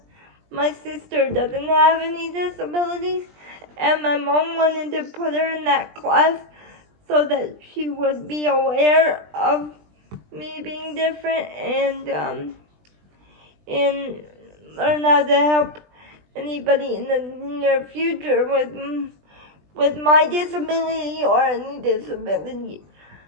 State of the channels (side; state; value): left; late; 20 ms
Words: my sister doesn't have any disabilities, and my mom wanted to put her in that class so that she would be aware of me being different, and learn how to help anybody in the near future with my disability or any disability,